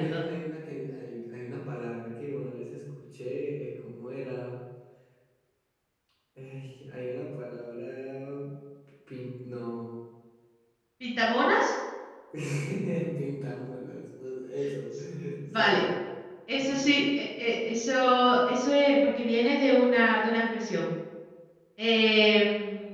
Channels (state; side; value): identical; both; correlation 1.00